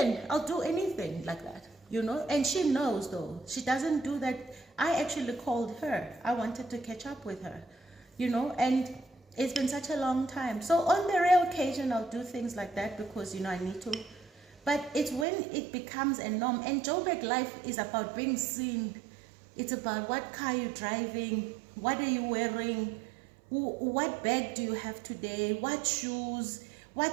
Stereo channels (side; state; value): left; drops out; at 15.2 s